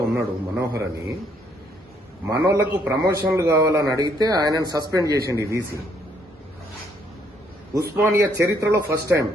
ఉన్నాడు మనోహర్ అని. మనోళ్లకు ప్రమోషన్లు కావాలని అడిగితే ఆయనను సస్పెండ్ చేసింది వీసీ. ఉస్మానియా చరిత్రలో ఫస్ట్ టైం.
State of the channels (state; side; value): normal; both; correlation 0.69